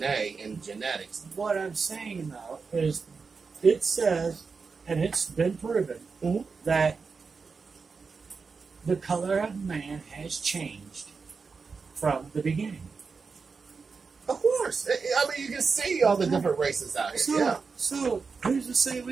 and genetics. What I'm saying, though, is it says, and it's been proven, that the color of man has changed from the beginning. Of course. I mean, you can see all the different races out here. So who's to say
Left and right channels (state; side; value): quieter; left; 4.9 dB